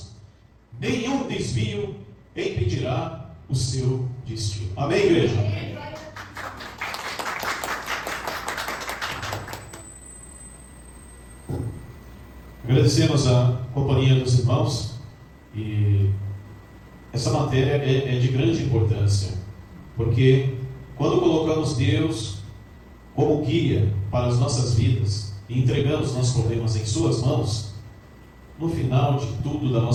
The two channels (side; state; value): both; identical; correlation 1.00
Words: nenhum desvio impedirá o seu destino. Amém, igreja? Agradecemos a companhia dos irmãos, e essa matéria é de grande importância, porque quando colocamos Deus como guia para as nossas vidas e entregamos nossos problemas em suas mãos, no final de tudo da